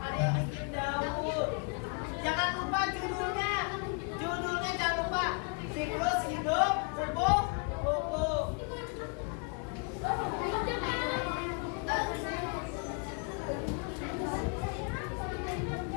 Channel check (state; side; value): quieter; right; 36.7 dB